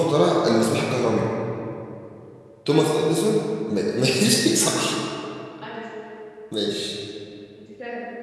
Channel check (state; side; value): identical; both; correlation 1.00